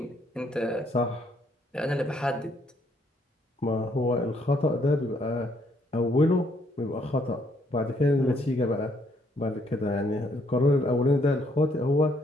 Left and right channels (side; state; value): both; normal; correlation 0.70